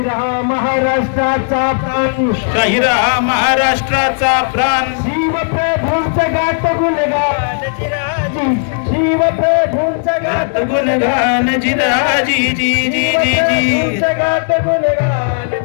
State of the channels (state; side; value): silent; right; digital silence